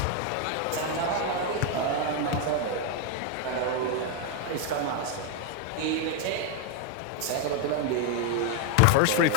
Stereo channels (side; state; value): both; different; correlation 0.01